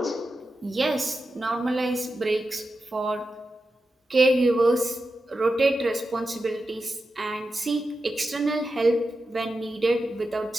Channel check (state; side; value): normal; both; correlation 0.90